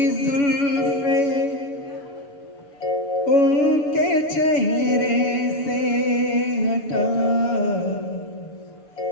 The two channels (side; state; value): right; late; 7.1 ms